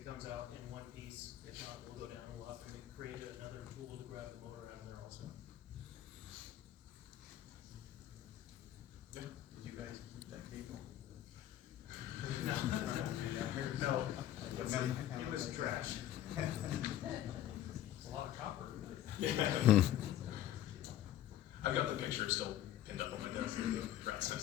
comes out in one piece, if not, we'll go down and we'll have to create another tool to grab the motor out of there also. Yeah. Did you guys keep that cable? No, it was trash. It's a lot of copper. Yeah. I've got the picture still pinned up on my desk, the rat's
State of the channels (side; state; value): right; quieter; 12.2 dB